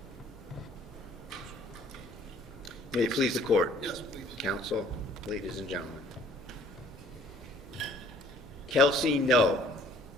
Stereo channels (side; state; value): both; normal; correlation 0.56